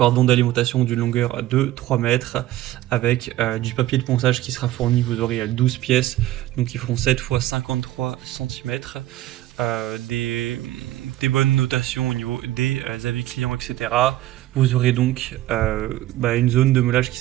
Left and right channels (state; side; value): quieter; left; 14.9 dB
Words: d'alimentation d'une longueur de 3 mètres avec du papier de ponçage qui sera fourni, vous aurez 12 pièces, donc ils feront 7 x 53 cm. Des bonnes notations au niveau des avis clients, etc. Vous aurez donc une zone de meulage qui